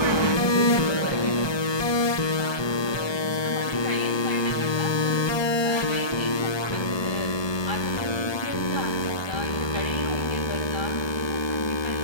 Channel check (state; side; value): late; right; 1.2 ms